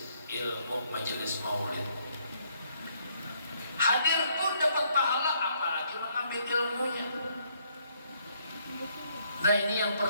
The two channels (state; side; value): inverted; both; correlation -0.70